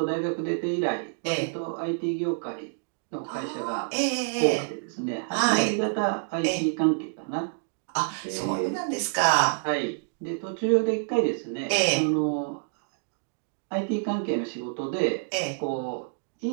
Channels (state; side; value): silent; left; digital silence